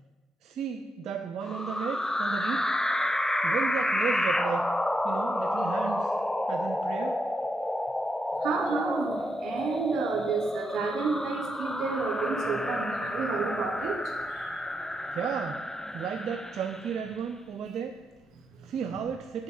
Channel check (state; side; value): normal; both; correlation 0.82